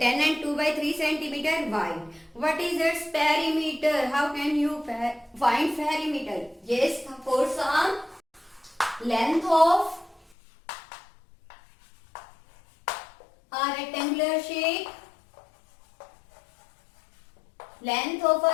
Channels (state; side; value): drops out; right; at 10.4 s